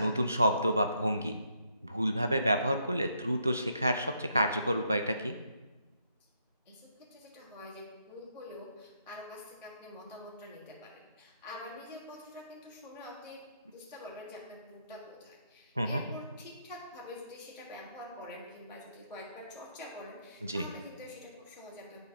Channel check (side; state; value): both; inverted; correlation -0.74